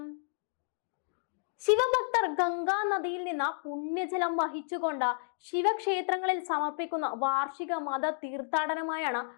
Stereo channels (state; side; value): silent; right; digital silence